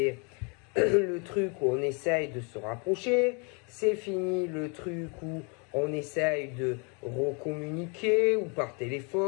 le truc où on essaye de se rapprocher. C'est fini le truc où on essaye de recommuniquer, ou par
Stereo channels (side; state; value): right; quieter; 34.3 dB